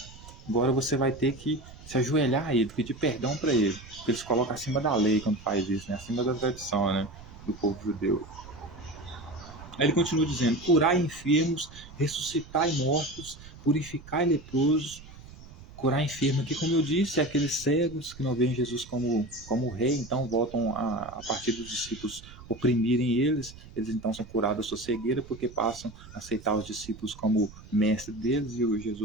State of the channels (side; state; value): right; noise; rumble, 18 dB below the sound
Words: Agora você vai ter que se ajoelhar a ele, pedir perdão para ele, porque ele se coloca acima da lei quando faz isso, né? Acima da tradição, né? Do povo judeu. Aí ele continua dizendo: curai enfermos, ressuscitai mortos, purificai leprosos. Curar enfermo aqui, como eu disse, é aqueles cegos que não veem Jesus como rei, então voltam a partir dos discípulos oprimirem eles então são curados da sua cegueira, porque passam a aceitar os discípulos como mestre deles e o